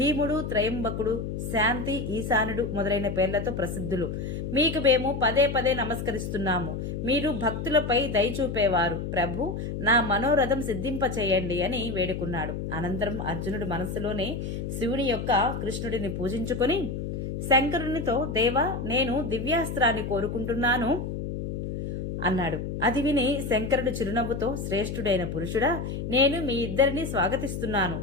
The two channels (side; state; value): left; noise; hum, 5 dB below the sound